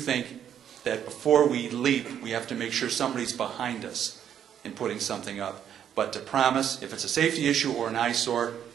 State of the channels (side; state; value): left; quieter; 9.3 dB